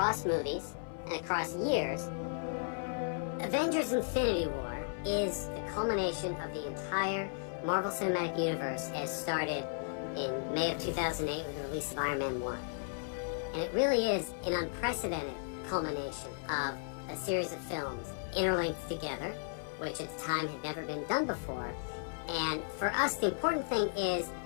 movies and across years? Avengers Infinity War is the culmination of the entire Marvel Cinematic Universe as started in May of 2008 with the release of Iron Man 1. And it really is an unprecedented culmination of a series of films interlinked together, which at the time had never been done before. And for us, the important thing is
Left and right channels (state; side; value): silent; right; 54 dB below the other